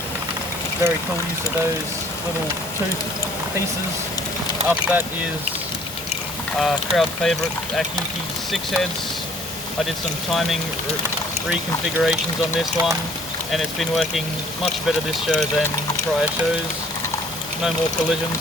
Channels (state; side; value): normal; both; correlation 0.56